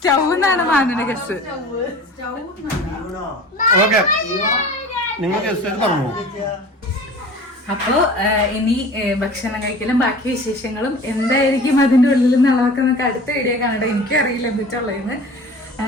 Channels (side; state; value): both; normal; correlation 0.41